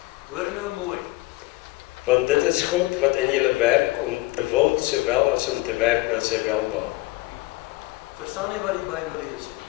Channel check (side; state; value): right; quieter; 20.2 dB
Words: Hoor nou mooi. Want dit is God wat in julle werk om te wil, sowel as om te werk na sy welbehae. Verstaan nie wat die Bybel lees nie.